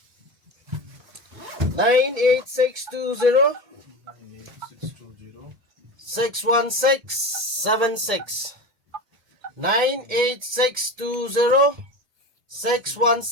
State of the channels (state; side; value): late; left; 1.8 ms